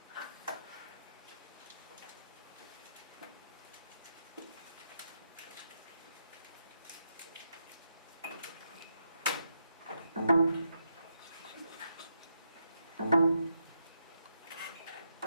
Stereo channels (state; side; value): inverted; both; correlation -0.81